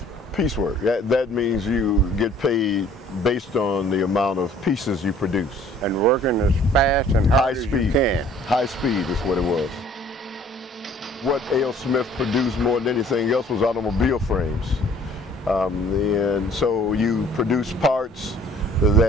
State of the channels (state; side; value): normal; both; correlation 0.56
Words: Piecework. That means you get paid based on the amount of pieces you produce. And working as fast and hard as you can. High speed is what it was. What A.O. Smith produced more than anything else was automobile frames. And so you produce parts